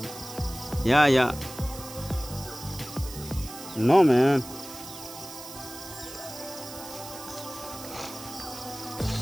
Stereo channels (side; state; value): right; noise; hiss, 13 dB below the sound